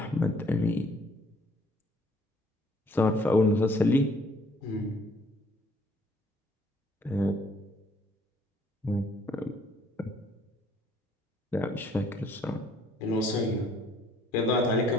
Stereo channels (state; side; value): normal; both; correlation 0.61